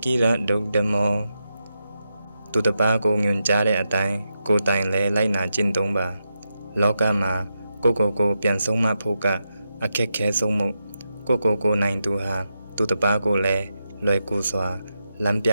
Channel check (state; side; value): inverted; both; correlation -0.87